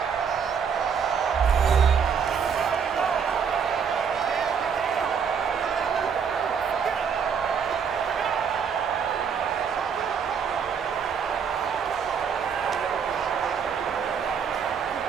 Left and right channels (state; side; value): quieter; left; 6.8 dB